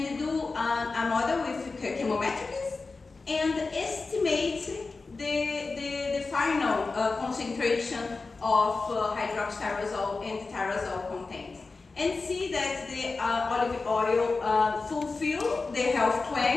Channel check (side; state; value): right; quieter; 4.0 dB